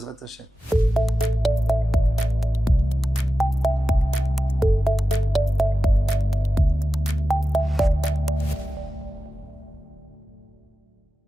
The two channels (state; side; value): normal; both; correlation 0.93